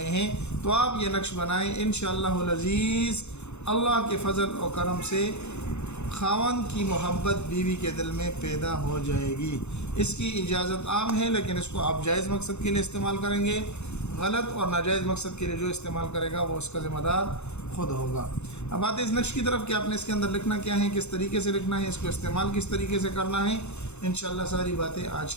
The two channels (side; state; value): right; late; 0.81 ms